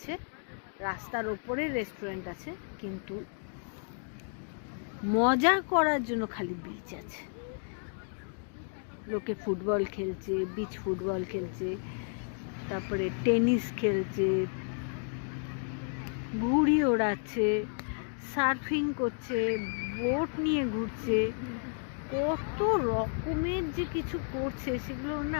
রাস্তার ওপরে রেস্টুরেন্ট আছে, কিন্তু মজা করার জন্য খালি বিচ আছে। লোকে ফুটবল খেলছে, বিচ ফুটবল খেলছে, তারপরে টেনিস খেলছে, ঘুড়ি ওড়াচ্ছে, সার্ফিং করছে, বোট নিয়ে ঘুরছে, কত রকমের যে কিছু করছে সেগুলো না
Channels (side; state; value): right; silent; 56 dB below the other